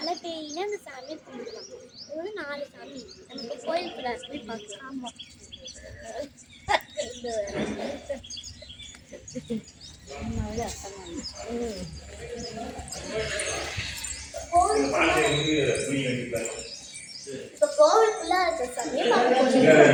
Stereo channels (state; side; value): identical; both; correlation 1.00